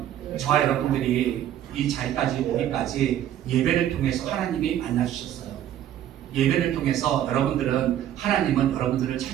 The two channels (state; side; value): quieter; left; 11.3 dB